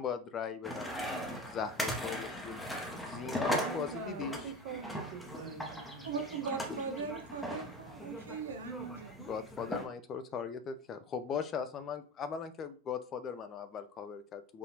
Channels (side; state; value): both; normal; correlation 0.32